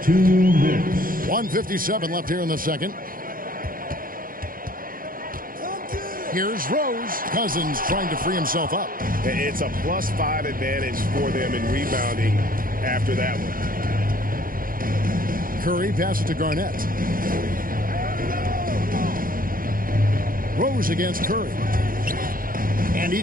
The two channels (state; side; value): late; left; 0.41 ms